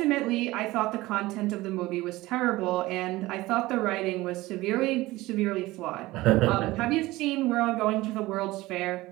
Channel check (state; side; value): quieter; left; 18.9 dB